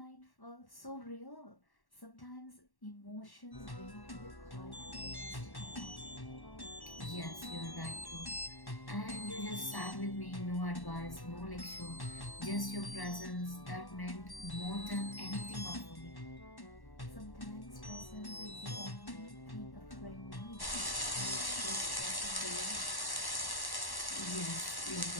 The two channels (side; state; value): right; late; 1.1 ms